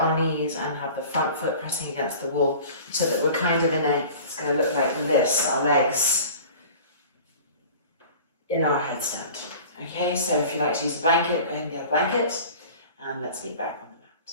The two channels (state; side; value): inverted; both; correlation -0.42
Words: knees and have the front foot pressing against the wall, so that we're kind of in a, it's going to look like this, our legs in our headstand. Okay, so if you like to use a blanket, go ahead and get a blanket, and let's get back on the mat.